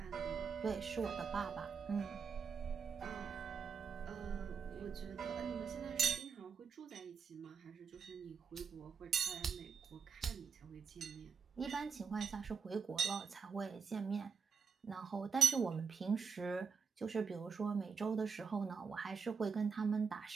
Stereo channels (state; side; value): quieter; left; 5.9 dB